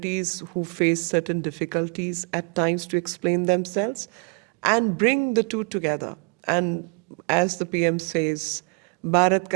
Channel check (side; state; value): left; quieter; 34.8 dB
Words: who face certain difficulties at times to explain themselves, and bring the two together. And as the PM says, Bharat